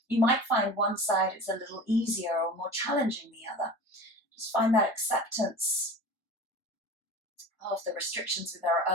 You might find one side is a little easier or more challenging than the other. Just find that acceptance of the restrictions with our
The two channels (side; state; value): both; normal; correlation 0.36